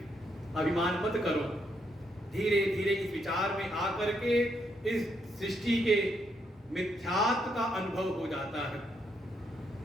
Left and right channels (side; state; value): both; normal; correlation 0.77